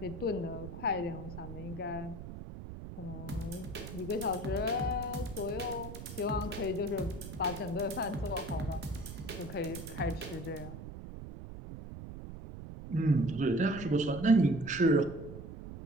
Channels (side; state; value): right; noise; rumble, 10 dB below the sound